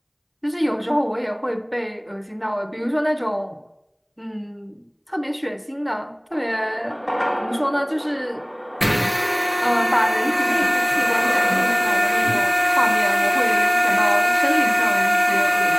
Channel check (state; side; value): identical; both; correlation 1.00